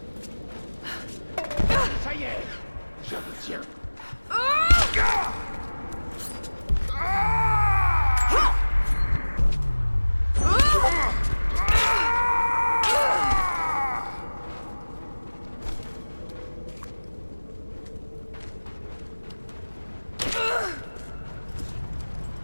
Ça y est, je vous tiens.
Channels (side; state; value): both; inverted; correlation -1.00